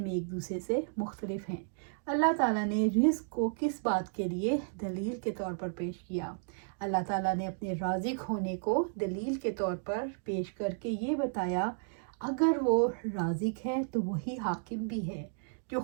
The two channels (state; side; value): silent; left; digital silence